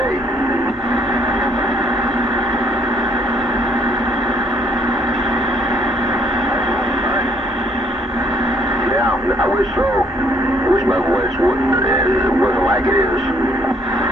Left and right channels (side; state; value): both; normal; correlation 0.65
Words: I wish so. I wish my voice wasn't like it is.